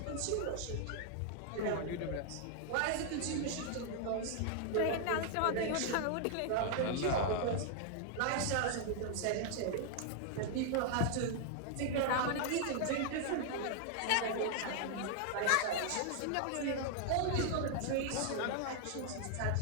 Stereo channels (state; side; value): different; both; correlation 0.00